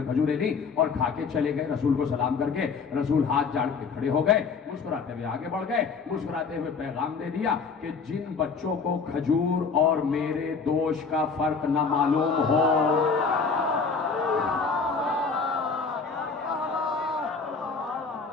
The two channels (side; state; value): right; quieter; 5.1 dB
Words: खजूरें ली और खा के चले गए। रसूल को सलाम करके रसूल हाथ जाड़ के खड़े हो गए, मुस्कुराते हुए आगे बढ़ गए, मुस्कुराते हुए पैगाम दे दिया कि जिन बच्चों को खजूर और मेरे दोष का फर्क न मालूम हो,